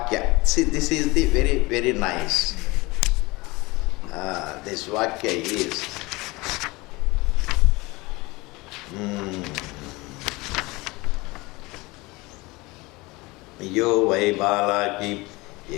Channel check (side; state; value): right; quieter; 23.0 dB